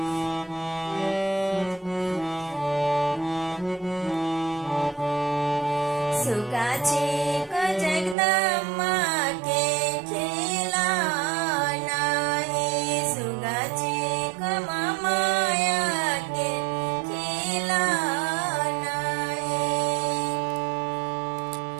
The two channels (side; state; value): left; drops out; at 8.2 s